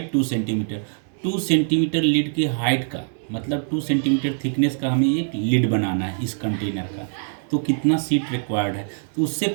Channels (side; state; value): left; silent; 63 dB below the other